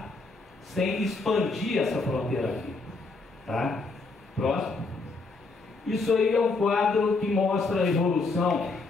sem expandir essa fronteira aqui. Tá? Próximo. Isso aí é um quadro que mostra a evolução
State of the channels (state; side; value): quieter; right; 3.7 dB